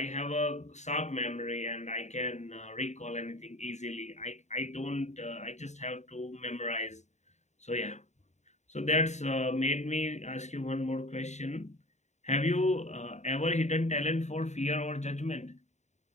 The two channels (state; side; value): late; right; 0.34 ms